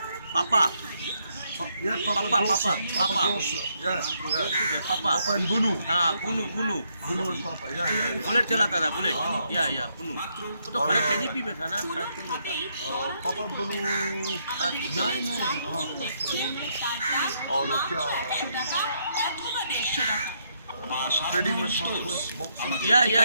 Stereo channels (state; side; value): inverted; both; correlation -0.75